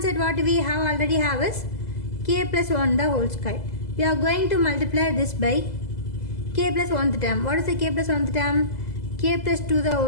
side what we have already have is k plus 1 the whole square. We are going to multiply this by k plus 1 term. What is the k plus 1 term? K plus 2 the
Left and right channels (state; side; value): late; right; 2.0 ms